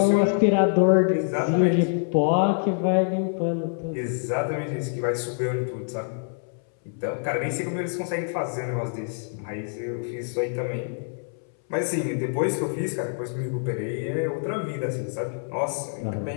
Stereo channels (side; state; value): right; silent; 61 dB below the other